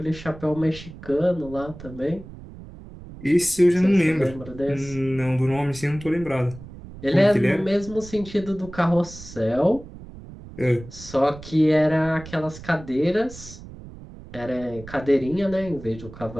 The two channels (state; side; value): noise; right; rumble, 16 dB below the sound